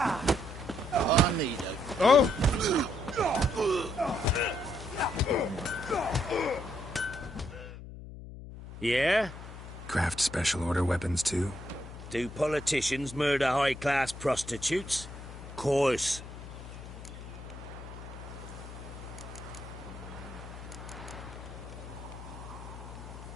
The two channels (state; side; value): noise; left; hum, 12 dB below the sound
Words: need a... Oh! Yeah? Craft special order weapons too? Do politicians murder high-class prostitutes? Course.